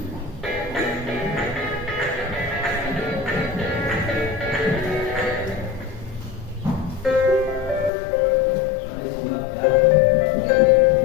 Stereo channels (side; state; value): right; drops out; at 7.9 s